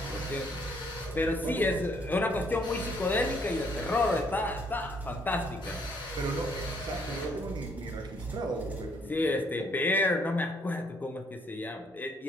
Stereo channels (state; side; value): normal; both; correlation 0.68